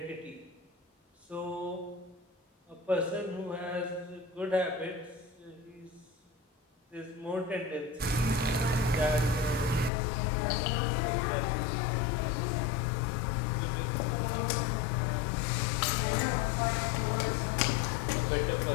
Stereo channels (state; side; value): drops out; right; at 9.9 s